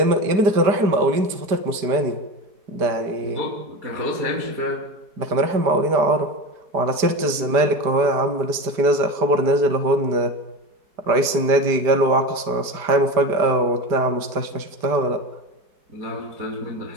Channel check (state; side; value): late; left; 5.1 ms